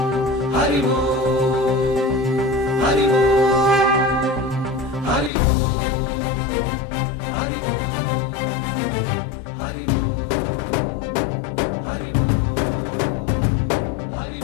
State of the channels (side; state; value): right; drops out; at 5.3 s